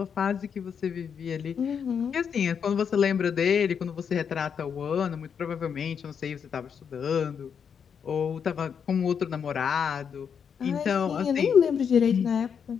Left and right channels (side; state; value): right; quieter; 7.1 dB